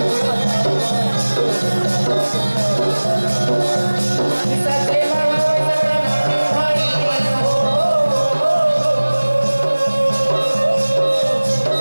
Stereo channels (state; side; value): inverted; both; correlation -1.00